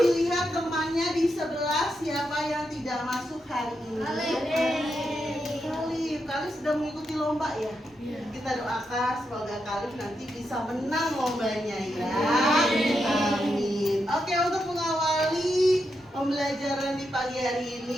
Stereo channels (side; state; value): both; normal; correlation 0.84